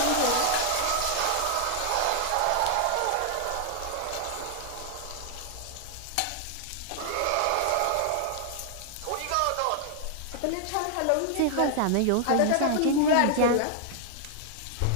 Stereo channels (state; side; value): different; both; correlation 0.00